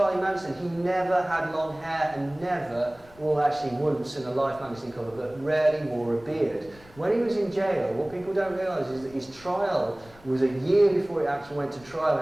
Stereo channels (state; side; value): noise; left; rumble, 24 dB below the sound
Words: Manson. He never had long hair and never, well actually once in a Life magazine cover, but rarely wore a beard. When he was in jail, what people don't realise is that his trial was a year before it actually went to trial,